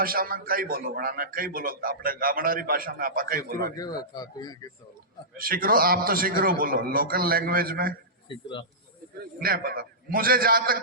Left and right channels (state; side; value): normal; both; correlation -0.18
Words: में कई बोलो, बनाना कई बोलो, अपने गामडारी भाषा में आप कई बोलो। शिकरो, आप तो शिकरो बोलो, लोकल लैंग्वेज में नहीं पता मुझे। जहां